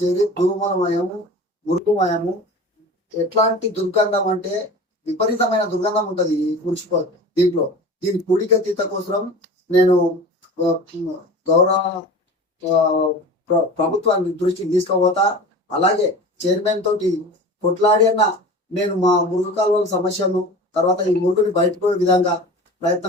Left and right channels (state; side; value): normal; both; correlation 0.36